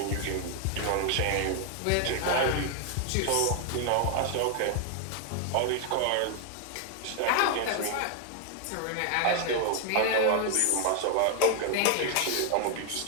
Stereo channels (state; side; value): different; both; correlation 0.00